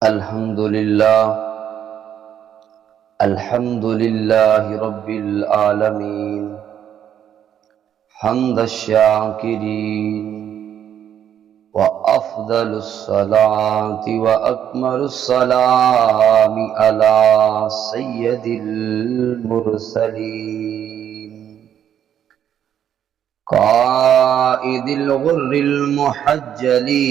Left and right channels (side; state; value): left; quieter; 9.6 dB